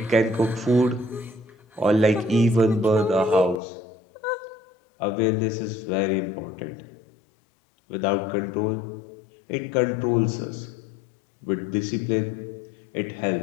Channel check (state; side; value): drops out; right; at 3.6 s